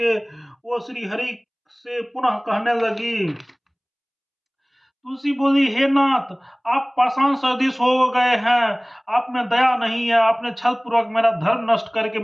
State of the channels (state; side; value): identical; both; correlation 1.00